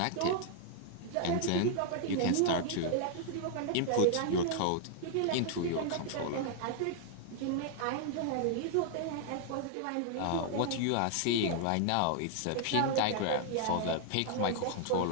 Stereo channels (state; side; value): different; both; correlation 0.00